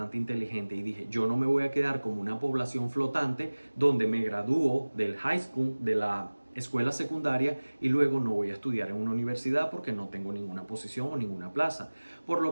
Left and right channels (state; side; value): inverted; both; correlation -1.00